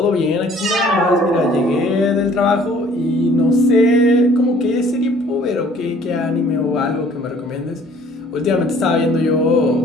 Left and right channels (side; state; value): both; normal; correlation 0.55